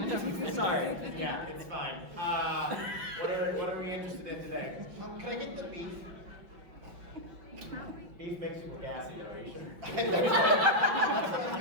Sorry. Yeah, it's fine. What are we interested in today? Can I get the beef? Beef makes people gassy, though, are you sure?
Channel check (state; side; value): late; left; 5.6 ms